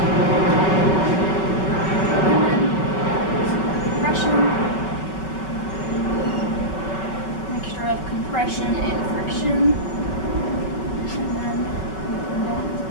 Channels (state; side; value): late; right; 5.3 ms